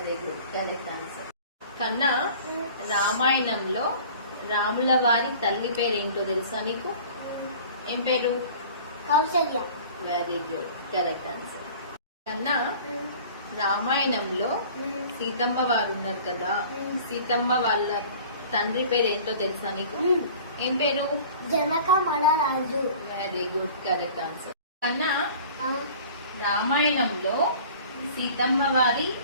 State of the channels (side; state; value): both; inverted; correlation -0.45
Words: good, correct answer. కన్నా, రామాయణంలో రాముల వారి తల్లి పేరు ఏంటో తెలుసా నీకు? ఏం పేరు? Kausalya. Very good, correct answer. కన్నా, రామాయణంలో సీతమ్మ వారు ఉన్నారు కదా, సీతమ్మ వాళ్ళ తండ్రి పేరు ఏంటో తెలుసా నీకు? ఏం పేరు? జనక మహారాజు. Very good, correct answer. కన్నా, రామాయణంలో సీతమ్మ వారి